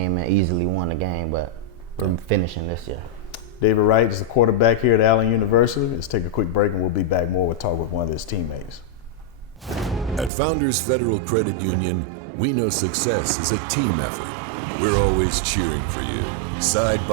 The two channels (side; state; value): left; drops out; at 10.3 s